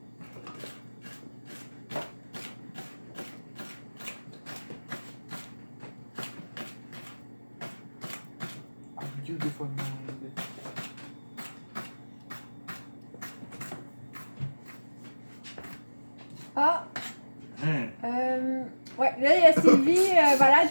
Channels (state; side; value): inverted; both; correlation -1.00